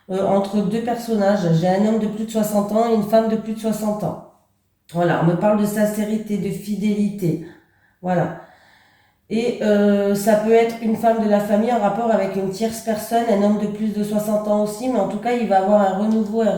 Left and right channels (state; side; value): identical; both; correlation 1.00